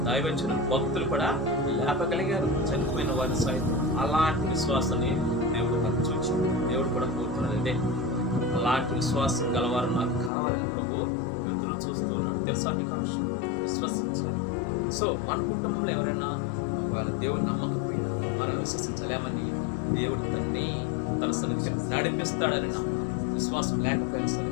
దైవజనులు, భక్తులు కూడా లేపగలిగారు, చనిపోయిన వారి సైతం. అలాంటి విశ్వాసాన్ని దేవుడు నాకు చూచాడు. దేవుడు కూడా కోరుకున్నది అలాంటి విశ్వాసం గలవారు నాకు కావాలని ప్రభు ఎదురు చూస్తూ ఉన్నాడు. తెలుసా మీకు ఆ విషయం? విశ్వసించాలి. సో మన కుటుంబంలో ఎవరైనా ఒకవేళ దేవుడు నమ్మకపోయినా మనం విశ్వసించలేమని, దేవుడు తన సన్నిధికి నడిపిస్తాడని నమ్మాలి. విశ్వాసం లేకపోయినా సరే,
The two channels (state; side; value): drops out; right; at 10.3 s